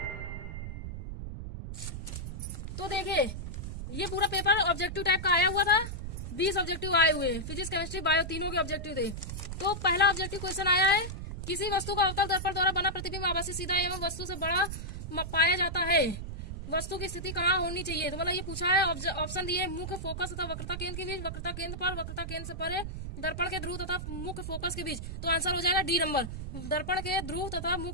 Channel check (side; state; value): right; noise; rumble, 7 dB below the sound